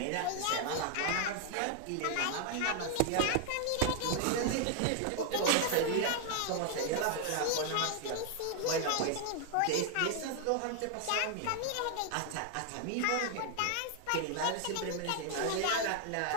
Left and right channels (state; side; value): different; both; correlation 0.00